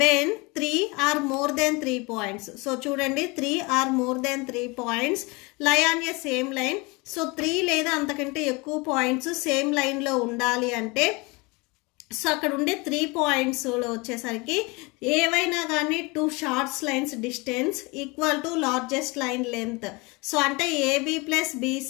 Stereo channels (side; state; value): right; quieter; 26.4 dB